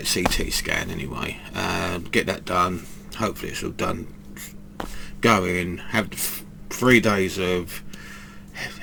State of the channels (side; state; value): both; identical; correlation 1.00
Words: CT scan anyway. Get that done. Hopefully it's all done. Go in, have 3 days of